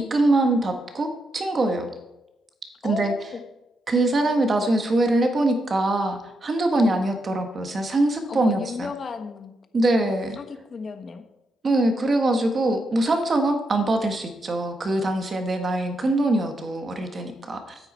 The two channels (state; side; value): normal; both; correlation 0.83